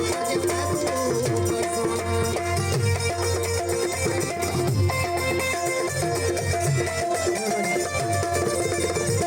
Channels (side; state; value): both; identical; correlation 1.00